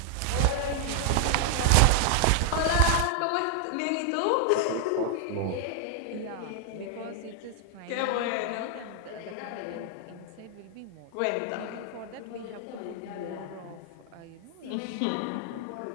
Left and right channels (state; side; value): different; both; correlation 0.00